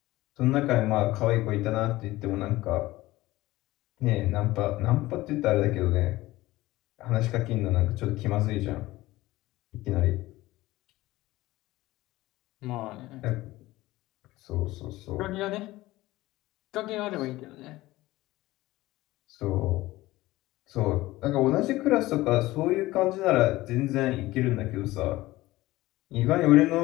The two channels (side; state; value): right; quieter; 18.0 dB